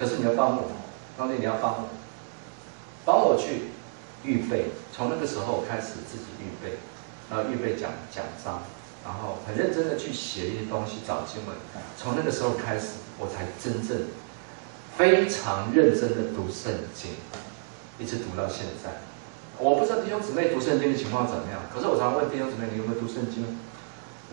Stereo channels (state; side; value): silent; left; digital silence